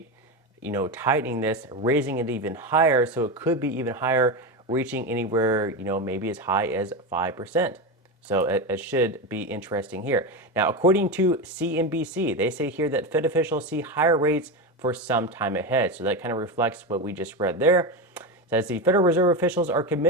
tightening this, raising it even higher, so it could be even higher, reaching anywhere, maybe as high as 5%. So it should be interesting here. Now, according to CNBC, they say here that Fed officials see higher rates for some time ahead. So that kind of reflects what we just read there. It says the Federal Reserve officials are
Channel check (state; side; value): normal; both; correlation 0.17